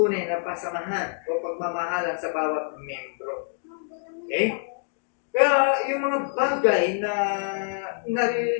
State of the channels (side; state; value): right; silent; digital silence